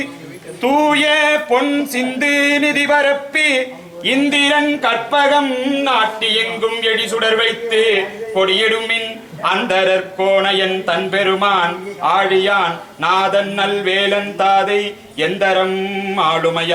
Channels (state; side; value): identical; both; correlation 1.00